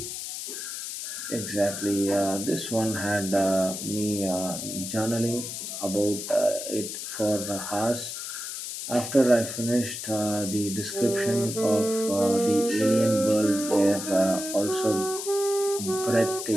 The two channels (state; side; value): noise; left; hiss, 6 dB below the sound